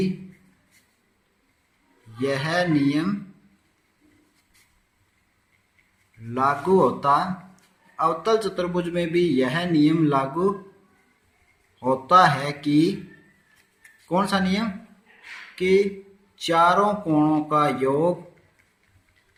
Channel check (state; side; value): identical; both; correlation 1.00